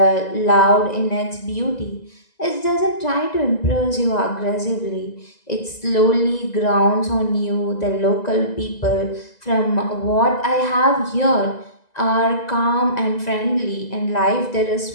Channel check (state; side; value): late; right; 2.0 ms